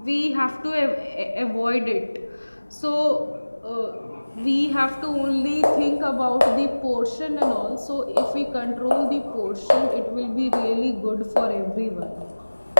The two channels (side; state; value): both; inverted; correlation -1.00